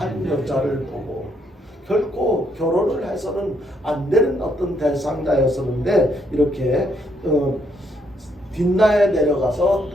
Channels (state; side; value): normal; both; correlation 0.73